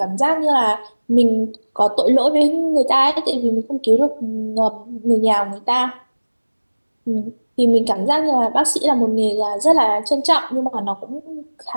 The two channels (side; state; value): both; inverted; correlation -1.00